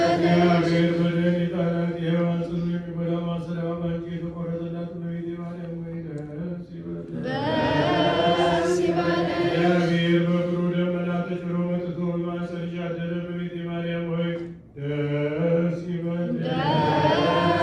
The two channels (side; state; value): both; identical; correlation 1.00